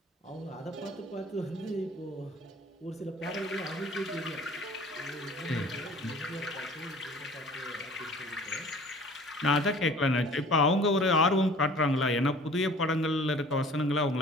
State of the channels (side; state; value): both; normal; correlation 0.48